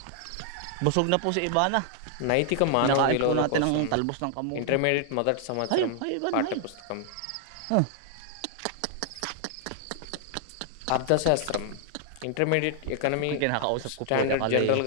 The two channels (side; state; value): both; different; correlation -0.01